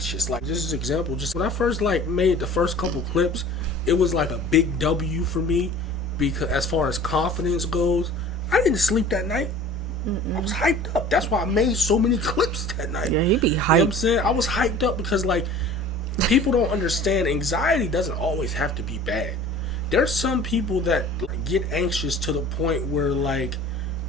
Like, just as an example, just when I first like made the first couple clips, it was like a big W for me because as far as confidence goes, I didn't sleep that night. I was hyped up. That's why I made so many clips that night. Yeah, he be hyped. You know what I'm saying? I was hyped up because, like, people don't understand anxiety doesn't always have to be bad. There's some people that like, get anxious to the point where, like,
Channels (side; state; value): both; normal; correlation 0.44